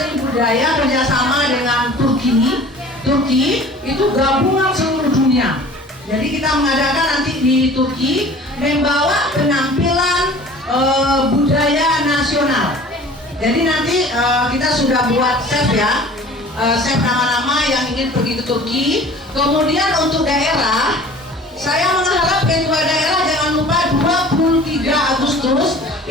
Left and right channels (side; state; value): both; normal; correlation 0.45